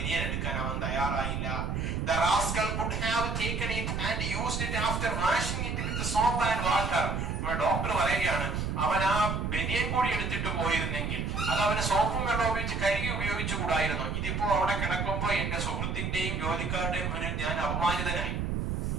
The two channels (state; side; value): noise; right; rumble, 1 dB below the sound